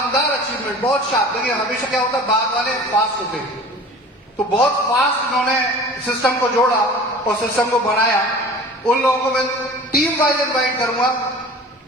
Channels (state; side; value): normal; both; correlation 0.41